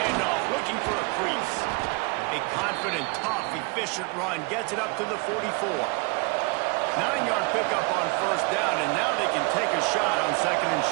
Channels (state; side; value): quieter; left; 29.1 dB